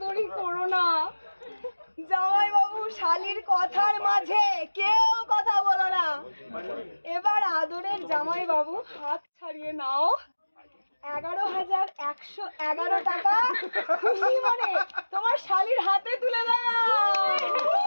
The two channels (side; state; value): both; inverted; correlation -1.00